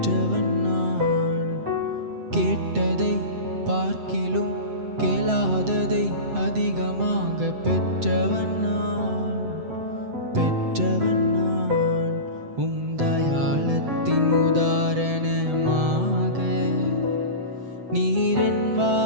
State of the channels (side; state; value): left; late; 7.8 ms